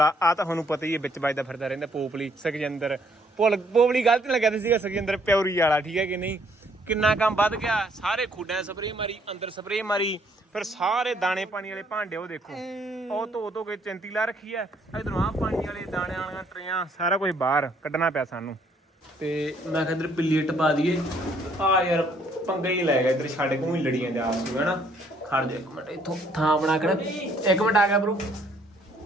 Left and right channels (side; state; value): both; normal; correlation 0.66